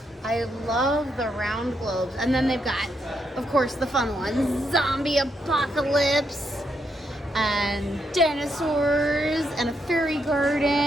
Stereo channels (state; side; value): normal; both; correlation 0.79